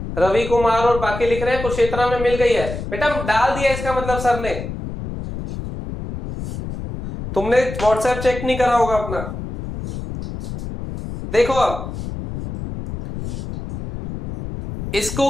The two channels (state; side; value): noise; left; rumble, 7 dB below the sound